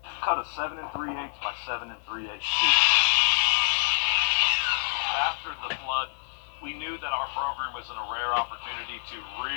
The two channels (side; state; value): right; silent; digital silence